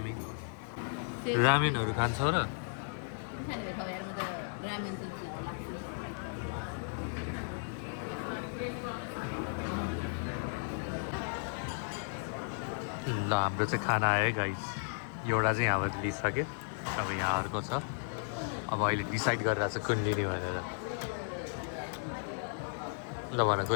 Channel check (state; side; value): silent; right; 55 dB below the other